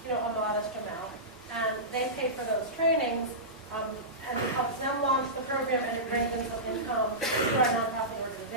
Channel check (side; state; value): both; normal; correlation -0.18